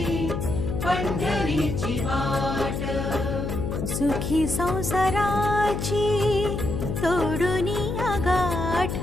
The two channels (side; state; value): left; noise; hum, 3 dB below the sound